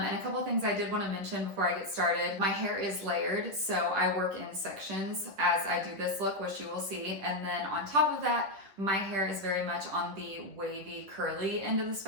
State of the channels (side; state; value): left; late; 11 ms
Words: a couple of things I did want to mention before I get started. My hair is layered, so I work in sections as I do this look, which you will see. And then on top of that, my hair is very much on the wavy, curly end of the